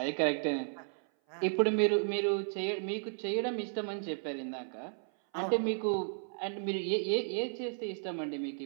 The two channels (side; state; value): left; silent; 55 dB below the other